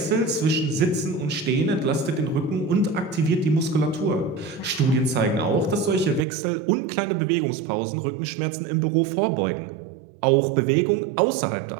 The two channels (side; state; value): left; drops out; at 6.2 s